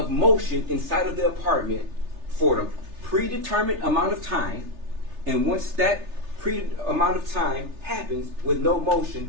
motion inside of the apartment for the predetermined amount of time, and once that amount of time happens with no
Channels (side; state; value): left; late; 3.3 ms